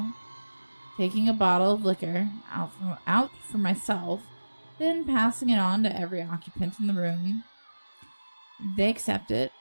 taking a bottle of liquor out for myself, then passing it on to every occupant in the room. They accept it,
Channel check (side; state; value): both; inverted; correlation -1.00